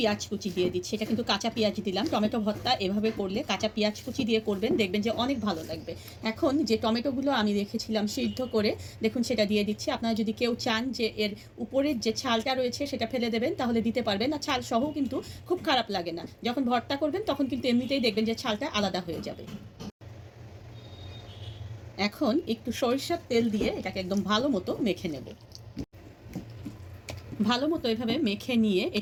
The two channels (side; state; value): both; identical; correlation 1.00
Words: কুচি দিয়ে দিচ্ছি। এটা কিন্তু কাঁচা পেঁয়াজ দিলাম। টমেটো ভর্তা এভাবে করলে কাঁচা পেঁয়াজ কুচি দিয়ে করবেন, দেখবেন যে অনেক ভালো লাগবে। এখন যে টমেটোগুলো আমি রেখেছিলাম সিদ্ধ করে, দেখুন সেটা দিয়ে দিচ্ছি। আপনারা যদি কেউ চান যে এর উপরের যে ছালটা রয়েছে সেটা ফেলে দেবেন তাহলে দিতে পারবেন, আর ছাল সহ কিন্তু খুব খারাপ লাগে না। যখন ভর্তা করবেন তখন কিন্তু এমনিতেই দেখবেন যে ছালটা আলাদা হয়ে যাবে। এখন একটু সরিষার তেল দিয়ে এটাকে একদম ভালো মতো মেখে নেব। ভালো মতো এভাবে মেখে নিয়ে